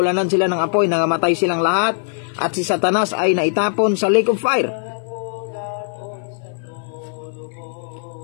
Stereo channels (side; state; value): right; silent; 63 dB below the other